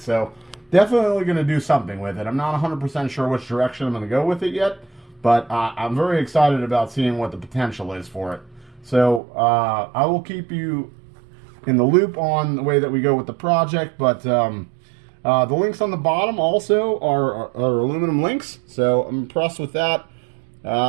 definitely going to do something with it. I'm not 100% sure which direction I'm going to go with it yet, but I'm very excited about seeing what the potential is for it. So I will keep you in the loop on the way that we go with the project, but the links on the bottom also are aluminum links, so I'm impressed with that.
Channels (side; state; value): left; drops out; at 9.2 s